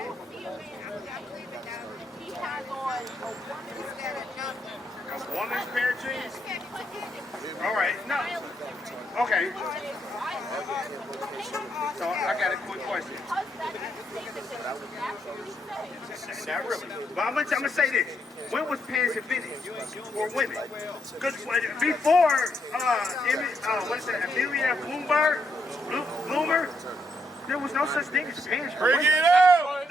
I believe in that. He has on a woman's Instead of nothing. A woman's pair of jeans? Can't put it. All right, no. Okay, so I got a quick question. Not really. But I'm gonna say this. When was pants invented for women? Because before, what is that, Amelia Bloomer, there was no such thing as pants for Bring women. it out.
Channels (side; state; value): both; normal; correlation 0.77